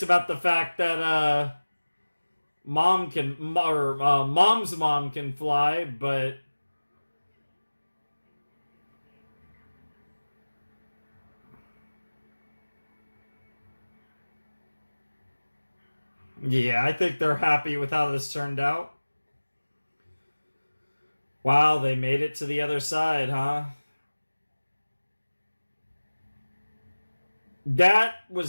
about the fact that mom's mom can fly, but yeah, I think they're happy with how this turned out. Wow, they made it to the other side, huh? That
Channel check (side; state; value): both; inverted; correlation -1.00